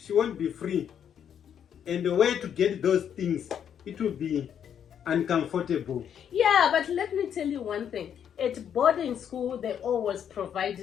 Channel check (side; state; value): right; quieter; 8.7 dB